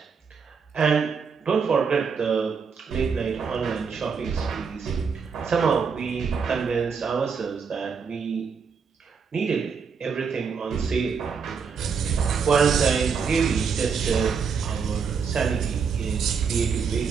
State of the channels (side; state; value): left; quieter; 5.9 dB